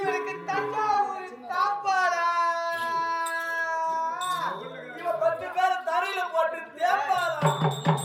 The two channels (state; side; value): identical; both; correlation 1.00